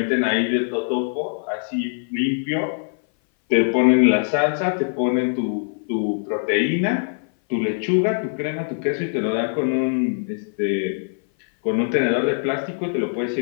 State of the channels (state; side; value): silent; right; 59 dB below the other